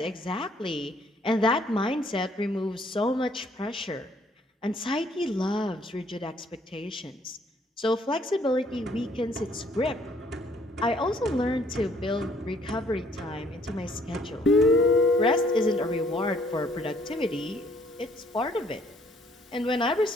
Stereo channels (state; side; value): normal; both; correlation 0.63